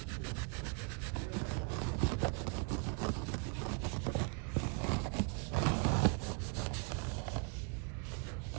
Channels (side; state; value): left; quieter; 37.4 dB